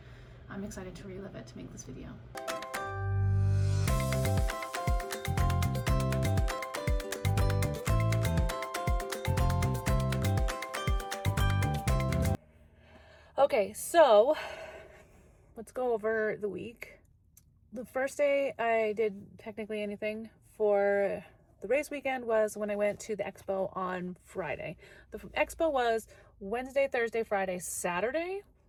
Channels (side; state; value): both; identical; correlation 1.00